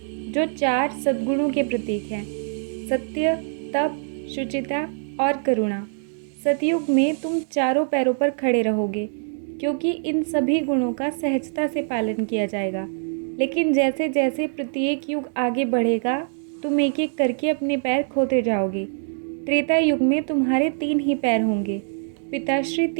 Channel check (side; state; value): left; silent; digital silence